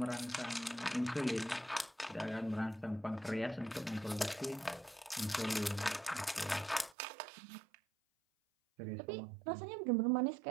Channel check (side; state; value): left; drops out; at 7.0 s